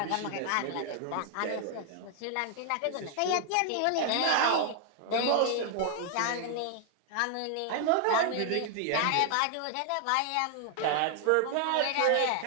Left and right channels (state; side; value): different; both; correlation 0.00